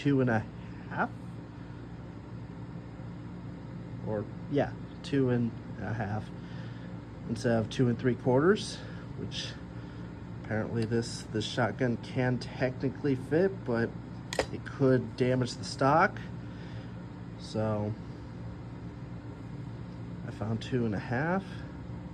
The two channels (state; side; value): identical; both; correlation 1.00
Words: or yeah, 2.5 instead of 2 3/4, which apparently this shotgun can technically fit, but it could damage the stock. So I found 2.5.